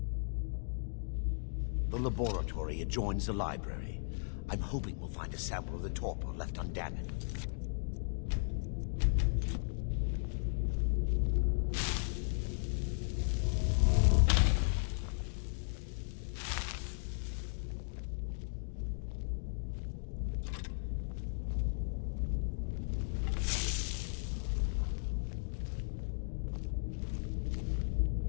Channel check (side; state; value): right; silent; digital silence